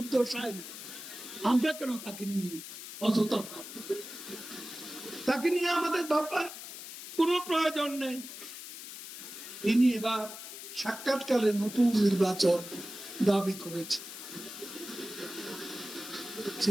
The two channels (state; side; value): noise; left; hiss, 11 dB below the sound